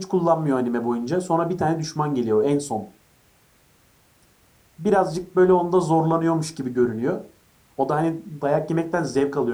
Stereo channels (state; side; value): identical; both; correlation 1.00